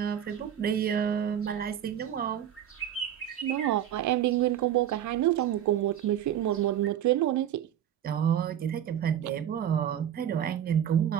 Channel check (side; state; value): left; quieter; 10.3 dB